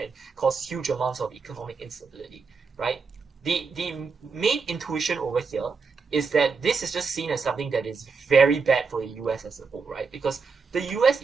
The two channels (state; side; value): quieter; left; 4.9 dB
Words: caused huge amounts of economic instability, right? The main intuition over here is that this is just seen as something that is very bad for the US as a whole, right? Because the US